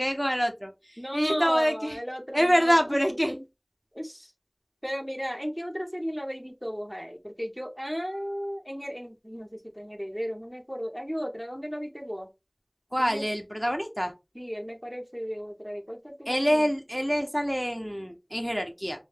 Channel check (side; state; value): both; identical; correlation 1.00